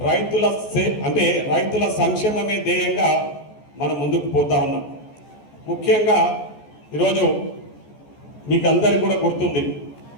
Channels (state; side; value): late; right; 14 ms